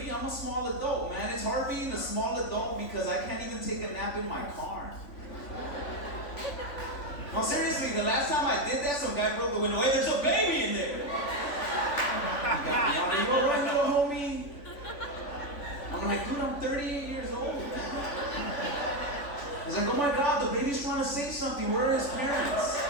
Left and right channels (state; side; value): late; right; 3.5 ms